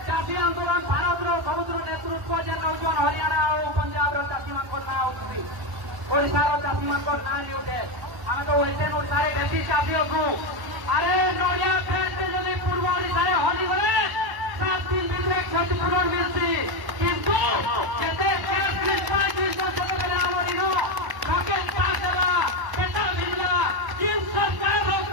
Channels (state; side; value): late; left; 1.0 ms